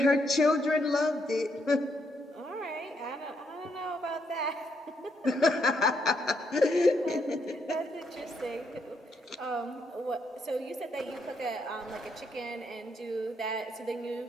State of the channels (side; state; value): both; normal; correlation 0.76